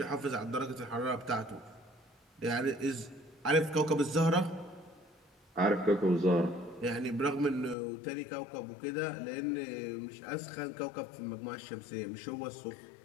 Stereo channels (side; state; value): right; drops out; at 7.8 s